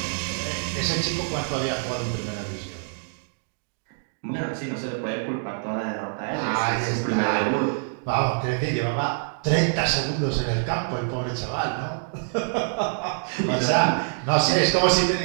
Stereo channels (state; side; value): silent; left; 61 dB below the other